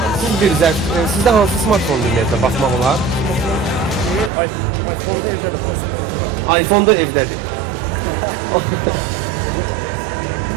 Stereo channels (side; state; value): left; drops out; at 4.3 s